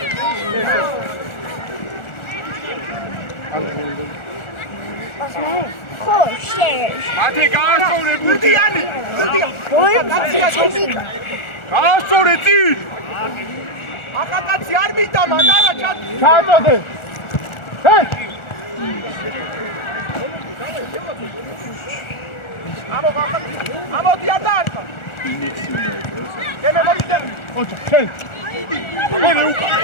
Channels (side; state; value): right; late; 1.4 ms